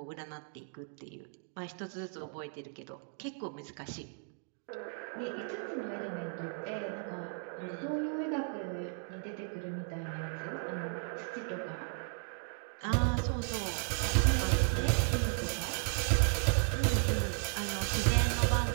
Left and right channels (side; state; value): left; silent; 54 dB below the other